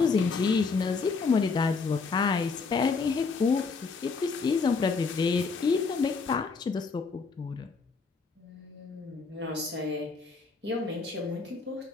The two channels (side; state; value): right; quieter; 4.7 dB